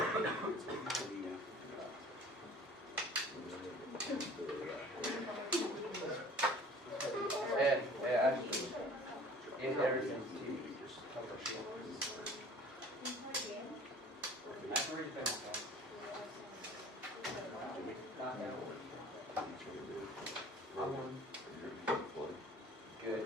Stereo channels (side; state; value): both; normal; correlation 0.48